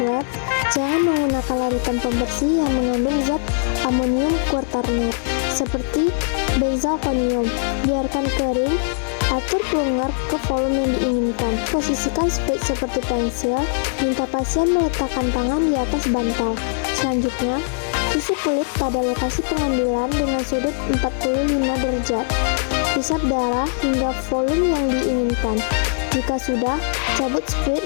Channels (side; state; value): right; silent; digital silence